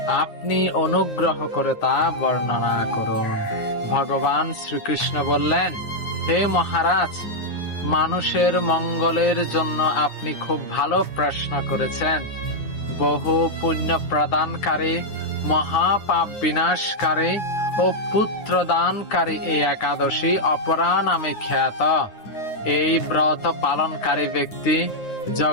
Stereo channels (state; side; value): late; right; 9.5 ms